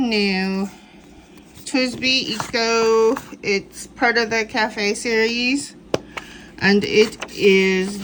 new TWSBI Eco. It's part of the cafe series, and it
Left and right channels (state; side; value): identical; both; correlation 1.00